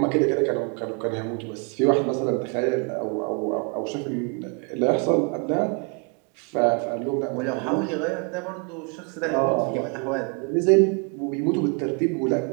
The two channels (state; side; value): quieter; left; 36.4 dB